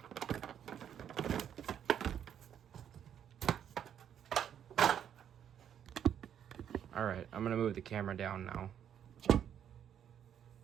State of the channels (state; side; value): quieter; left; 9.2 dB